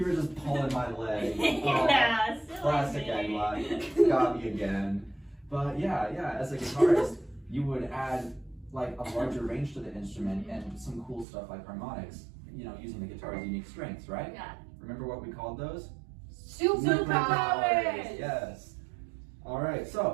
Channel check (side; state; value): left; drops out; at 11.2 s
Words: were just pulling my leg. Yeah, silly Classic me. Egla. Got me again. But yeah, as a guitarist, you would add like a larger range to the instrument and some cool stuff like harmonics, you know, using the guitar's unique strengths, right? Yeah. Remember what we called those? Superpowers! Yes. All right,